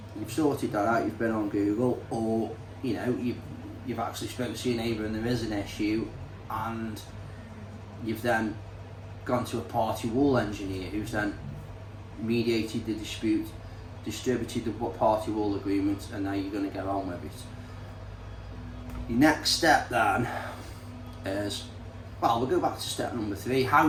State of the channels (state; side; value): identical; both; correlation 1.00